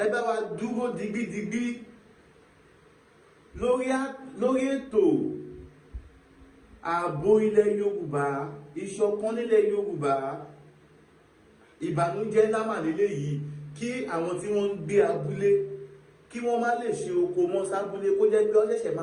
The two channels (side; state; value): both; identical; correlation 1.00